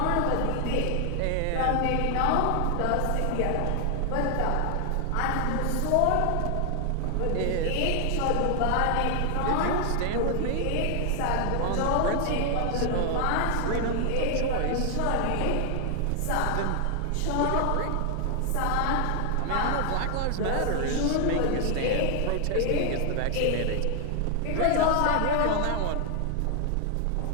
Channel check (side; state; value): both; different; correlation 0.00